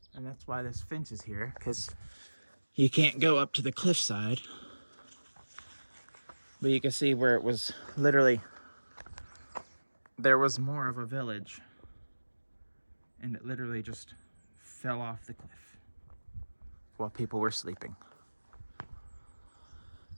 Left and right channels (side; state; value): both; inverted; correlation -1.00